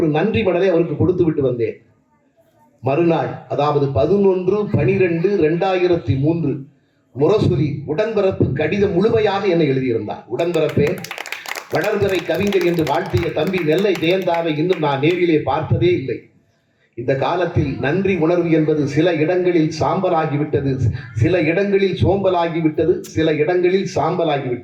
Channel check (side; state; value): both; identical; correlation 1.00